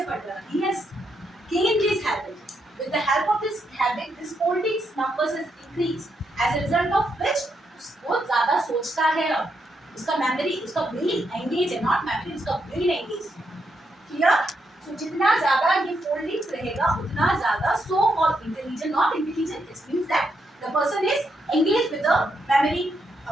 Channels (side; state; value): both; normal; correlation 0.80